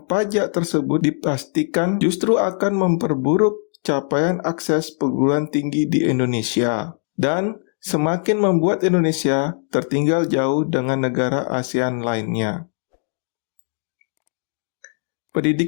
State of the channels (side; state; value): right; silent; 58 dB below the other